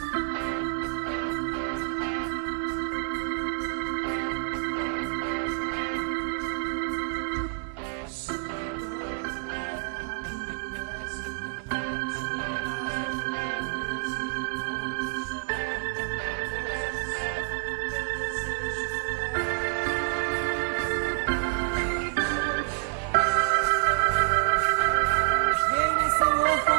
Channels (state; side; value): silent; left; digital silence